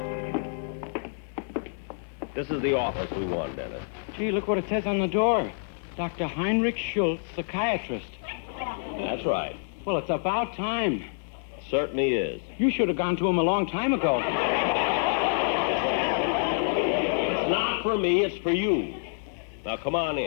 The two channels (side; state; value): right; silent; digital silence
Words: This is the office we want, Dennis. Gee, look what it says on the door. Dr. Heinrich Schultz, psychiatrist. That's right. Well, it's about time. Certainly is. You should have gone to him a long time ago. It's not for me, it's for you. Now, come on